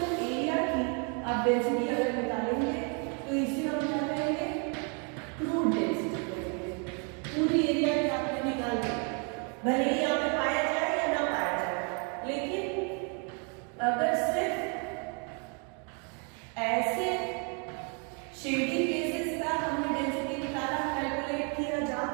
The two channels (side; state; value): left; quieter; 37.4 dB